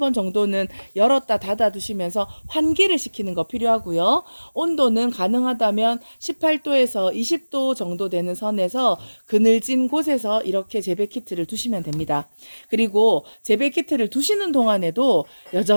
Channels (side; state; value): both; inverted; correlation -1.00